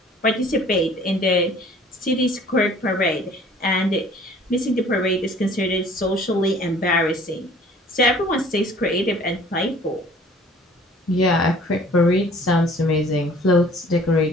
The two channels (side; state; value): both; normal; correlation 0.52